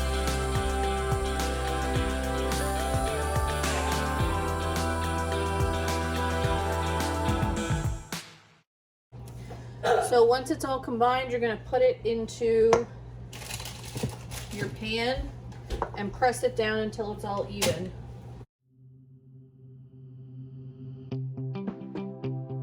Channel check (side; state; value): both; identical; correlation 1.00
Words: So once it's all combined, you're going to put it into your pan and press it down until it's all even.